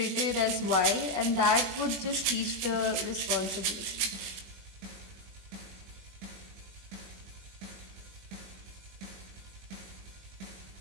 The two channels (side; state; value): left; late; 21 ms